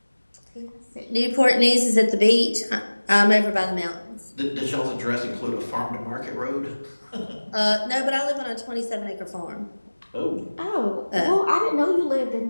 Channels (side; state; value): both; inverted; correlation -1.00